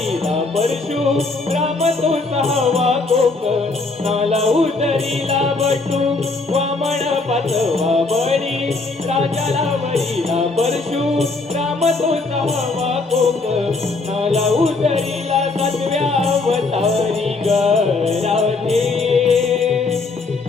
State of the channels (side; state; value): right; quieter; 3.6 dB